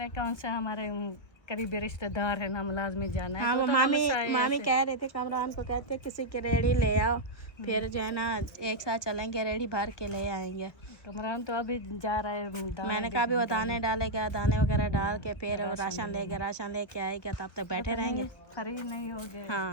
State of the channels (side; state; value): right; late; 1.5 ms